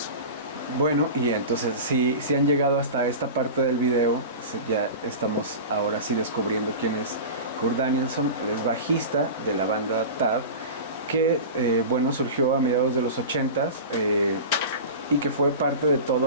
Bueno, y entonces si han llegado hasta esta parte del video, ya estamos ahora sí descubriendo quién es Kurt Danielson. Él es bajista de la banda Tad, que bueno, surgió a mediados de los 80s y que fue parte de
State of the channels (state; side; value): inverted; both; correlation -0.30